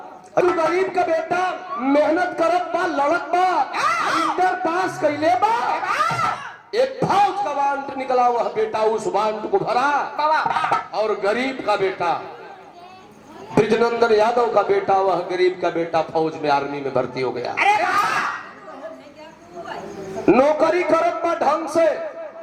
गरीब का बेटा मेहनत करत बा लड़त बा इंटर पास कैले बा। एक फौज का वांट निकला वह बेटा उस वांट को भरा और गरीब का बेटा ब्रिजनंदन यादव का बेटा वह गरीब का बेटा फौज में आर्मी में भर्ती हो गया। नौकरी करत बा ढंग से,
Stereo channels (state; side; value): identical; both; correlation 1.00